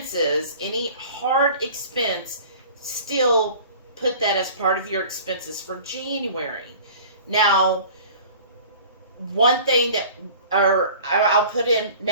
any hard expense, still put that as part of your expenses for January. Now, one thing I'll put in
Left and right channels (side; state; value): both; inverted; correlation -0.45